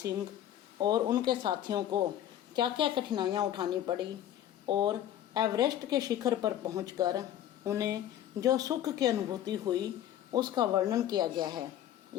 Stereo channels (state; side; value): quieter; right; 11.5 dB